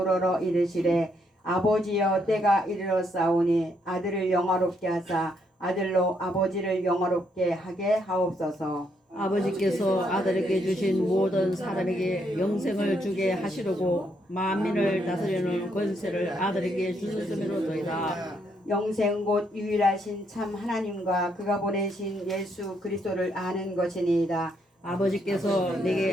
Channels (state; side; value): normal; both; correlation 0.75